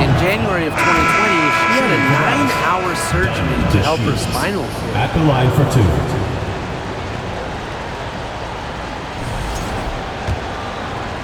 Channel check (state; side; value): identical; both; correlation 1.00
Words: January of 2020, she had a 9-hour surgery to help her spinal cord. At the line for two.